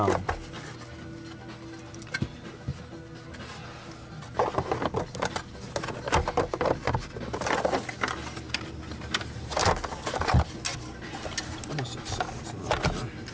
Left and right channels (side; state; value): both; identical; correlation 1.00